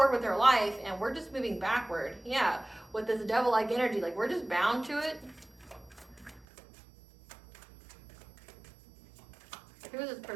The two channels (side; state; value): left; drops out; at 6.5 s